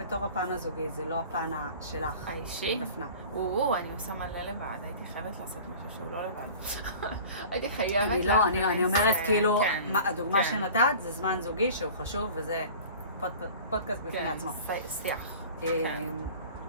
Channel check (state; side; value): inverted; both; correlation -0.41